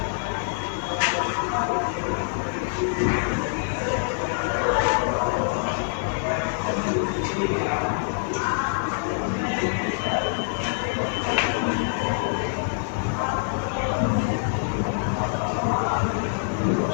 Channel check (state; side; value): silent; right; digital silence